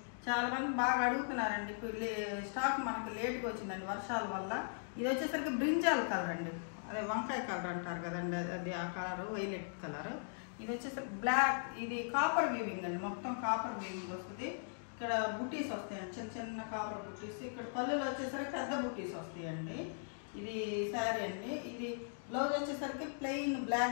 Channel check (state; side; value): silent; right; digital silence